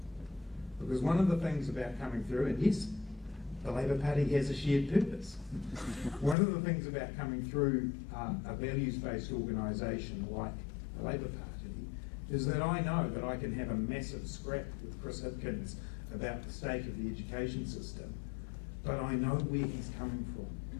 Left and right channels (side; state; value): right; drops out; at 6.4 s